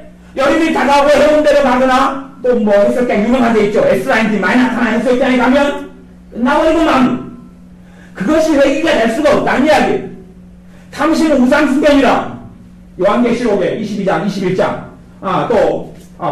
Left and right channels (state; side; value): identical; both; correlation 1.00